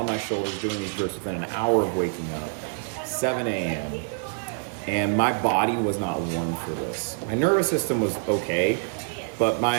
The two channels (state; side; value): silent; left; digital silence